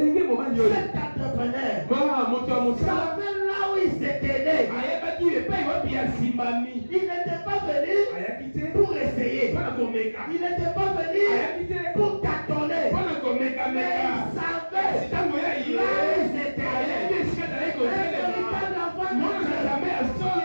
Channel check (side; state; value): both; inverted; correlation -1.00